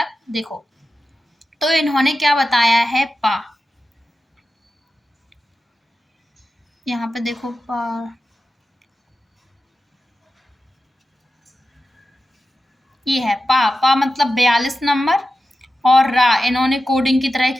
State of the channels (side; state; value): both; normal; correlation 0.92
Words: देखो तो इन्होंने क्या बताया है, पा, यहाँ पे देखो पा, ये है पा मतलब 42 नंबर, और रा इन्होंने कोडिंग की तरह